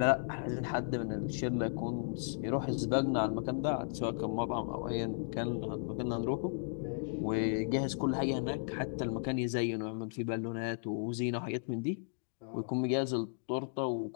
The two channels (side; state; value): right; silent; digital silence